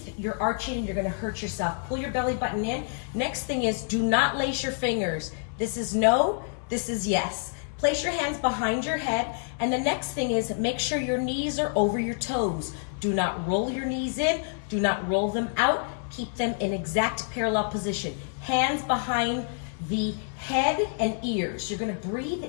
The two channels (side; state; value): right; silent; 60 dB below the other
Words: you're arching and you're gonna hurt yourself. Pull your belly button in. Next thing is, do not lace your fingers. This is no, this is yes. Place your hands behind your head, and the next thing is make sure your knees are over your toes. Do not roll your knees in, do not roll them out. Keep them in exact parallel position. Hands behind the head and ears. You're gonna breathe